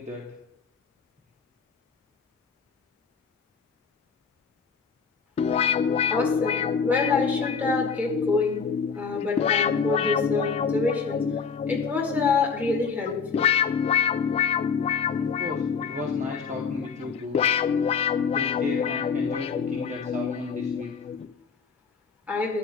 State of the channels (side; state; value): right; quieter; 5.7 dB